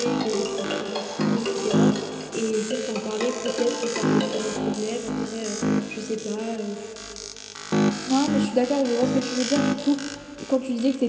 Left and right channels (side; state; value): both; identical; correlation 1.00